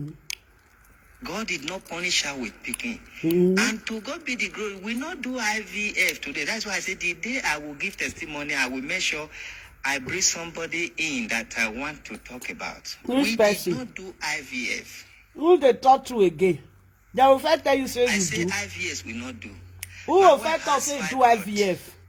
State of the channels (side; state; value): both; identical; correlation 1.00